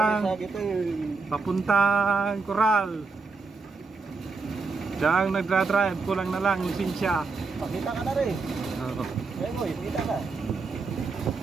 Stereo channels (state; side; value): quieter; left; 4.2 dB